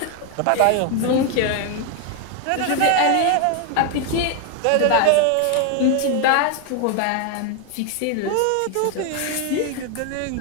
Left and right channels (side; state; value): both; different; correlation 0.01